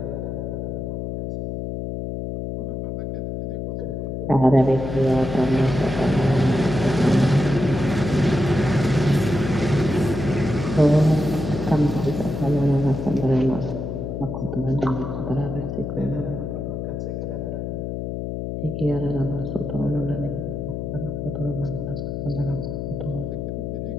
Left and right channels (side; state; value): left; noise; hum, 4 dB below the sound